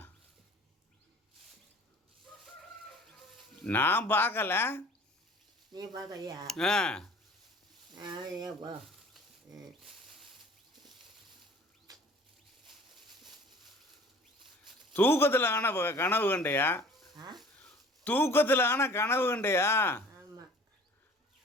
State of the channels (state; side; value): normal; both; correlation 0.48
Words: நான் பார்க்கல. நீ பார்க்கலையா? ஆ, ஏப்பா தூக்கத்தில் ஆன கனவு கண்டையா? தூக்கத்தில் ஆன கனவு கண்டையா? ஆமாம்.